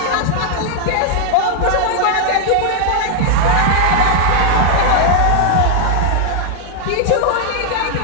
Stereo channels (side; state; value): both; different; correlation 0.00